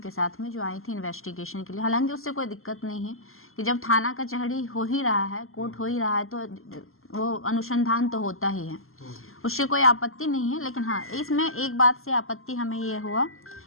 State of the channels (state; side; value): late; right; 0.62 ms